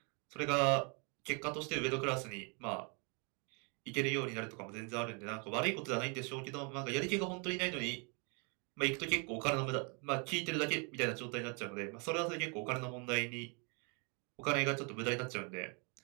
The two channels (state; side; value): quieter; left; 34.8 dB